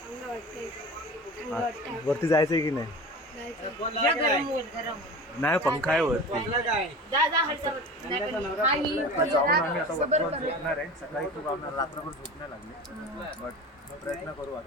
वरती जायचंय की नाही? नाही पंखा आहे वरती. जाऊन आम्ही आता वरती झोपणार आहे. सकाळी खूप आम्हाला रात्रभर झोप नाही लागली बट प्रयत्न करू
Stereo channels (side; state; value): both; normal; correlation 0.34